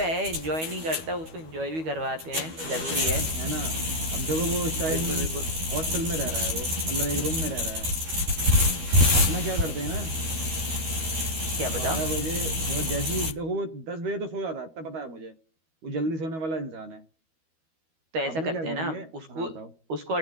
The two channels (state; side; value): late; left; 12 ms